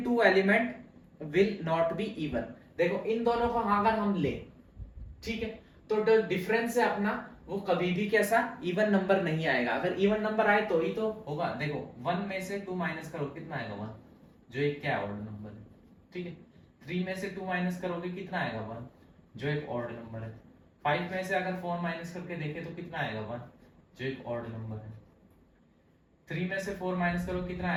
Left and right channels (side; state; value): both; identical; correlation 1.00